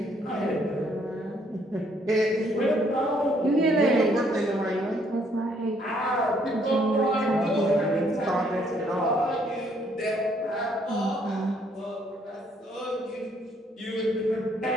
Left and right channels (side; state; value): both; normal; correlation 0.67